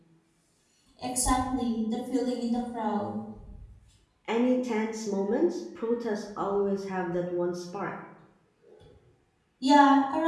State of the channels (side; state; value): both; identical; correlation 1.00